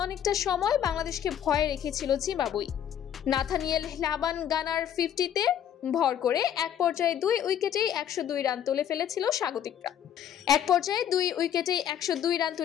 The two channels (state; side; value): quieter; right; 9.9 dB